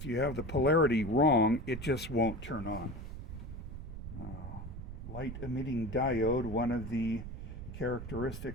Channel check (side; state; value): right; noise; rumble, 9 dB below the sound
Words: you have the polarity wrong, it just won't turn on. Light emitting diode, one of the